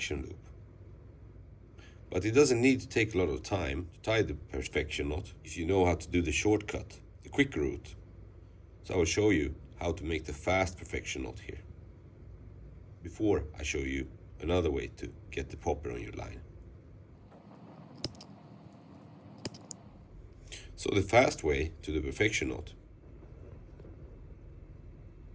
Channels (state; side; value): identical; both; correlation 1.00